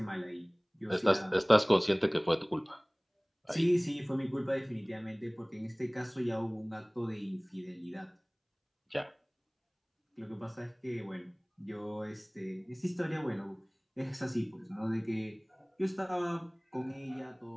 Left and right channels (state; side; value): identical; both; correlation 1.00